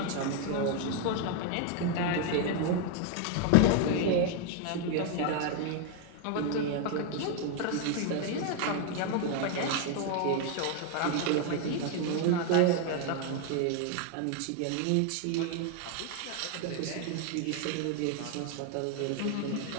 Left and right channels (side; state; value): both; different; correlation 0.01